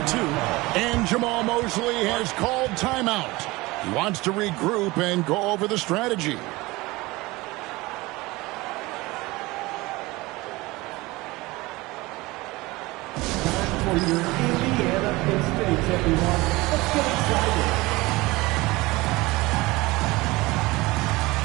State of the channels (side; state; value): left; quieter; 21.4 dB